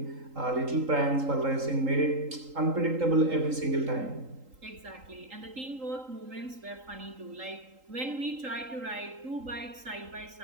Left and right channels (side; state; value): left; late; 3.8 ms